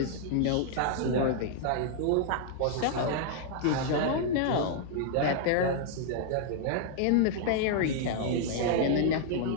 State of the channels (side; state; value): both; different; correlation -0.01